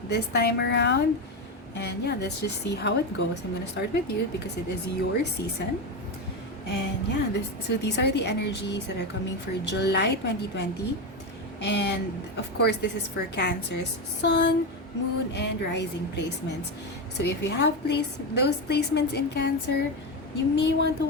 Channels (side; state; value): both; normal; correlation 0.14